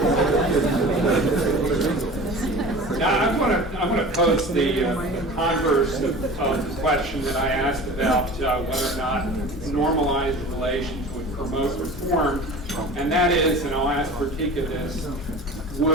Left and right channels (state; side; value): normal; both; correlation 0.38